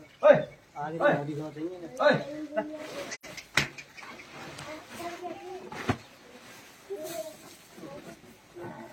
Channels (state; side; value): identical; both; correlation 1.00